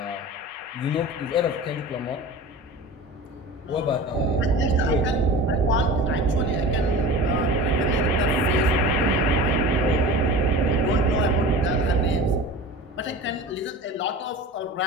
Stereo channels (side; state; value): both; normal; correlation 0.36